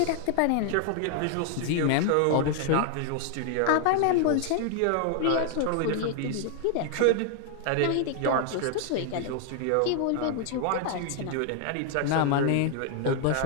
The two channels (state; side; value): different; both; correlation 0.00